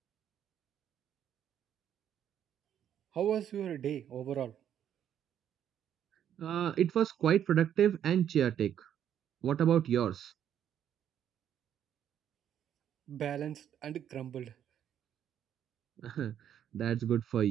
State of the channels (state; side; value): quieter; left; 9.8 dB